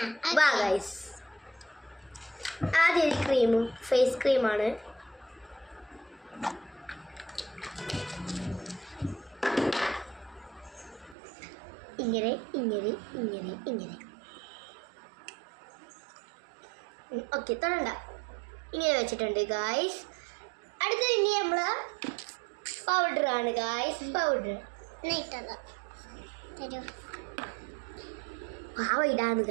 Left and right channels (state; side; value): drops out; left; at 11.2 s